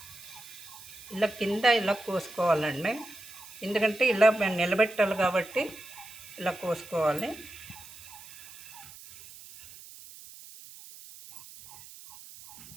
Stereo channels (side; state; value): right; noise; hiss, 17 dB below the sound